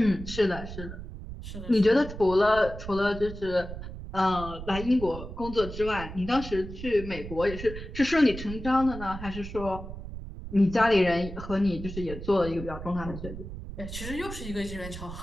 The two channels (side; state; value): right; noise; rumble, 10 dB below the sound